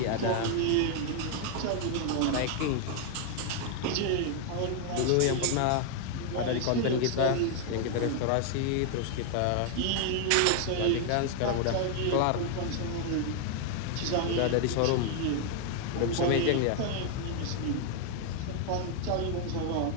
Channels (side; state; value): both; different; correlation 0.00